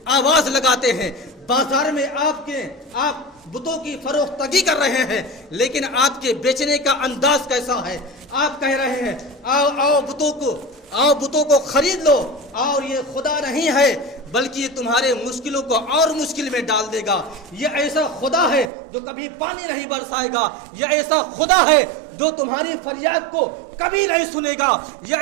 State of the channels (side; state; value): left; drops out; at 18.7 s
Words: آواز لگاتے ہیں، بازار میں آپ بتوں کی فروختگی کر رہے ہیں، لیکن آپ کے بیچنے کا انداز کیسا ہے؟ آپ کہہ رہے ہیں آؤ بتوں کو خرید لو، اور یہ خدا نہیں ہے بلکہ یہ تمہارے مشکلوں کو اور مشکل میں ڈال دے گا، یہ ایسا خدا ہے جو کبھی پانی نہیں برسائے گا، یہ ایسا خدا ہے جو تمہاری فریاد کو کبھی نہیں سنے گا،